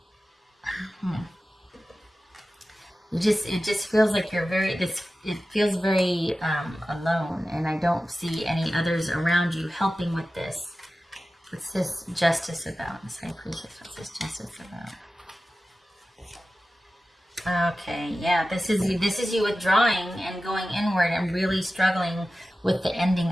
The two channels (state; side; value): normal; both; correlation 0.94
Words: it just feels like you're it feels very alone. And I don't see any others around you helping with this. What's this justice about? This high priestess, what's this justice about? Okay, yeah, this is you withdrawing and going inward and really struggling with the ending